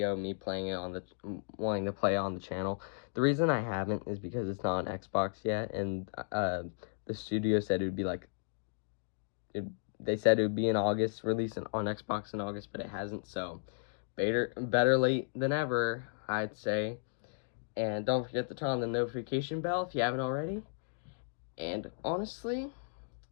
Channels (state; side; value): silent; right; digital silence